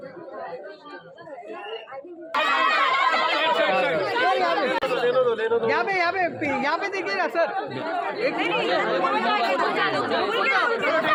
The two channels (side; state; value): both; identical; correlation 1.00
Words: यहाँ पे देखिएगा सर